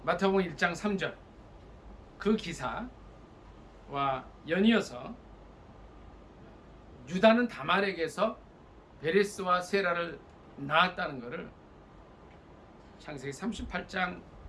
마태복음 1장 3절 그 기사와 연이어서 유다는 다말에게서 베레스와 세라를 낳았다는 것을 창세기 38장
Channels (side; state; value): both; identical; correlation 1.00